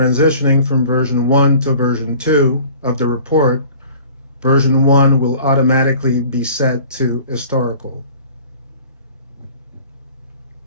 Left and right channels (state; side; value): inverted; both; correlation -0.47